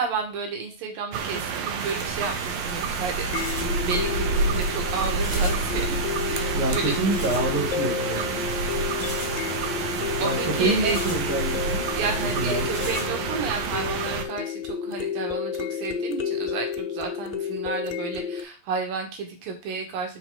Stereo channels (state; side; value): late; left; 11 ms